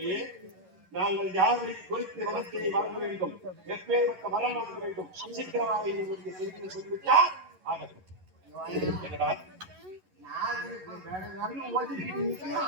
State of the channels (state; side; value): late; left; 11 ms